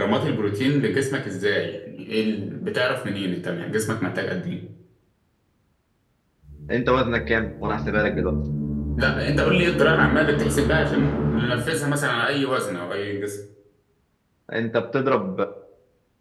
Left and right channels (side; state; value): both; identical; correlation 1.00